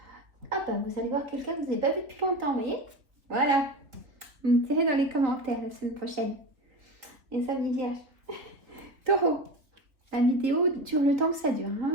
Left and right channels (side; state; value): left; late; 3.3 ms